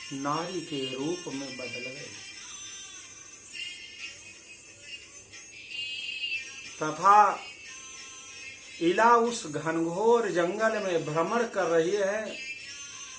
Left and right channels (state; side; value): identical; both; correlation 1.00